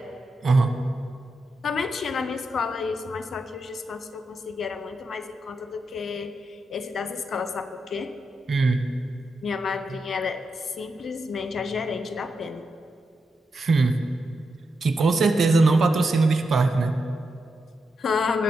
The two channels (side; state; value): both; normal; correlation 0.85